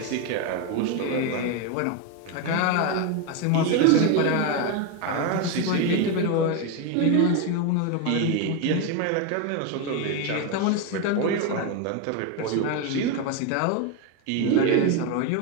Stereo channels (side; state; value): both; different; correlation 0.02